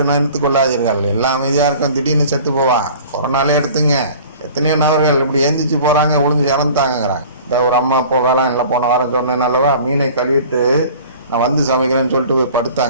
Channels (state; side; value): inverted; both; correlation -0.45